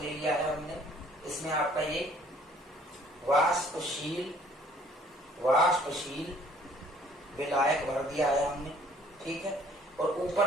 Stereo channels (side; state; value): both; normal; correlation 0.58